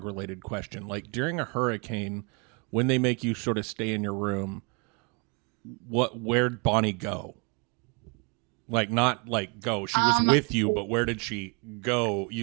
related question. Like during a hurricane, when they make you sort of stay in your room, where'd Bonnie go? Like not like go. She was with you, but where did she go,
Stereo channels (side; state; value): left; quieter; 32.4 dB